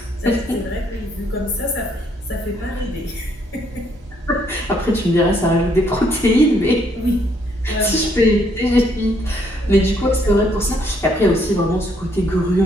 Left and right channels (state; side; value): normal; both; correlation 0.70